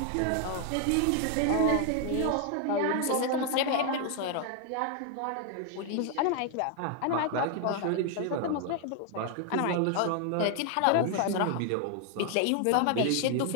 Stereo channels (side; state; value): both; different; correlation 0.00